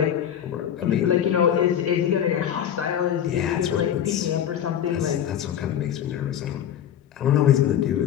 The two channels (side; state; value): right; quieter; 9.8 dB